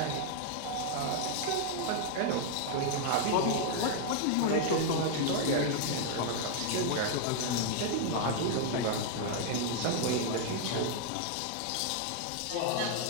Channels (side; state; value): both; different; correlation 0.00